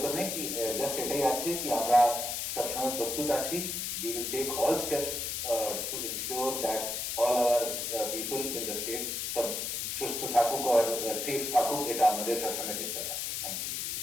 নেই, কি জাস্ট এটাই আছে কি আমরা সবসময় প্রস্তুত আছি। We will take all steps to ensure that all our people in the state সব সুস্থ থাকুক আর সেফ থাকুক, এটা আমাদের সবসময় চেষ্টা থাকবে। Thank you.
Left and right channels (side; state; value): left; noise; hiss, 2 dB below the sound